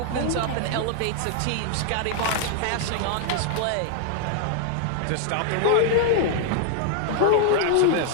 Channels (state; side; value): different; both; correlation 0.00